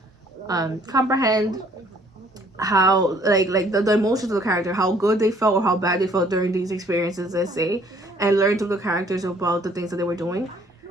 comprehend how like the emotions of the character, how good they felt or how bad they felt during these experiences, let's say, and learn through the characters about the things that they were doing.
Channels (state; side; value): normal; both; correlation 0.60